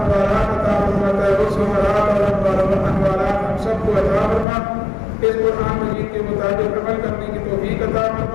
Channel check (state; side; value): drops out; right; at 4.5 s